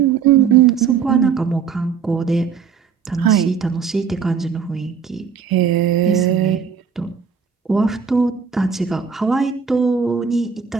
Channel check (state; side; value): quieter; left; 6.5 dB